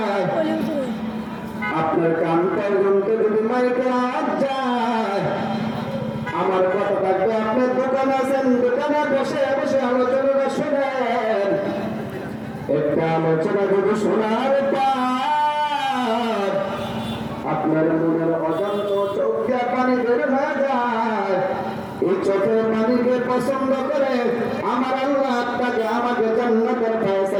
আপনার কান পর্যন্ত যদি মাইকের আওয়াজ যায়, আমার কথা থাকবে আপনার দোকান আছেন, দোকানে বসে বসে আলোচনাটা শোনেন। একটা আলোচনা যদি শোনার পর আপনার মনের অজান্ত চোখে পানি বের হয়ে যায়, এই চোখের পানিকে পছন্দ করে আমার আল্লাহ আপনাকে আমাকে জান্নাতের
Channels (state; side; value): identical; both; correlation 1.00